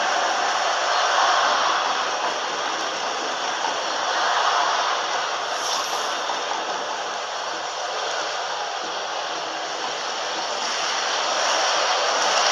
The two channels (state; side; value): identical; both; correlation 1.00